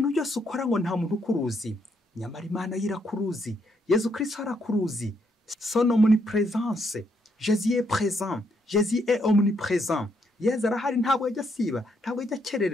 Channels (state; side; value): normal; both; correlation 0.75